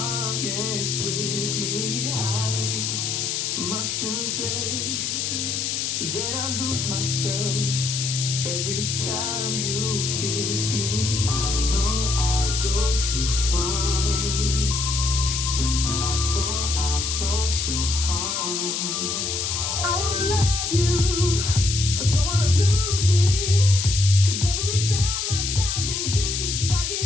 with me? I must confess that I lose myself every time you kiss me. I know I go too far. When I fall so hard. I wanna love you, I don't wanna lose me. 'Cause every time I dive in deep, I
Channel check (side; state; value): left; noise; hiss, 1 dB below the sound